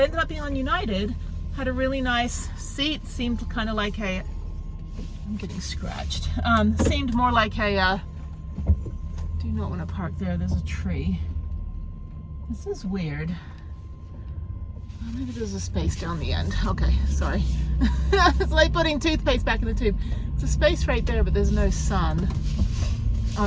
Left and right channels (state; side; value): identical; both; correlation 1.00